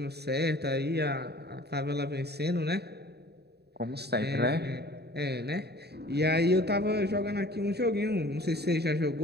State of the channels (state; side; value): late; left; 0.48 ms